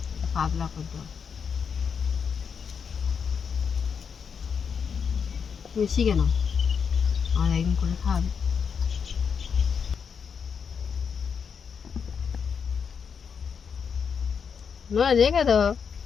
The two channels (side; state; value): right; quieter; 6.5 dB